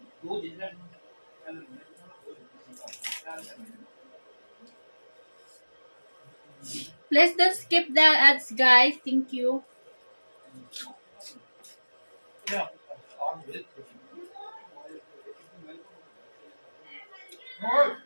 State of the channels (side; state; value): both; inverted; correlation -1.00